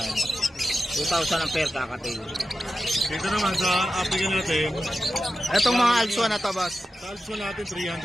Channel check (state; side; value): normal; both; correlation 0.91